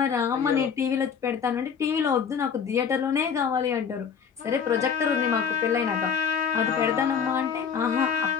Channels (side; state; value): right; quieter; 6.8 dB